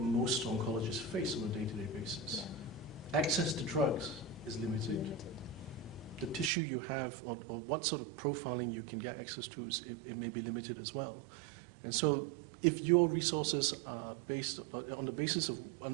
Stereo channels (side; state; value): left; drops out; at 6.5 s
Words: oncologists face on a day-to-day basis. Yeah. Access to drugs is limited. The tissue you have, or what sort of profiling you can get access to, it may be limited as well. And so, if your resources are based on the basis